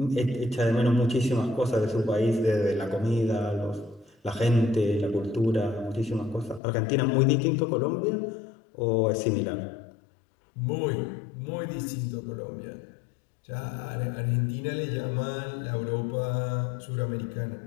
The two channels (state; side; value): drops out; right; at 6.6 s